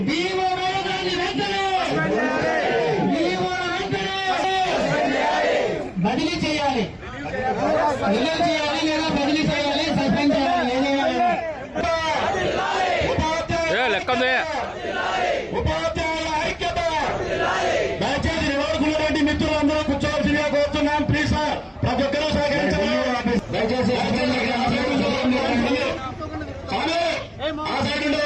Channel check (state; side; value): identical; both; correlation 1.00